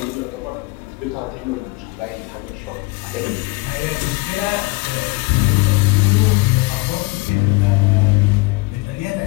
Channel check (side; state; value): right; quieter; 25.0 dB